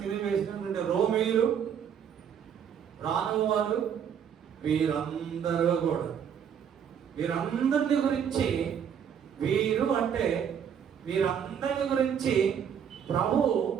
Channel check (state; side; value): quieter; left; 8.1 dB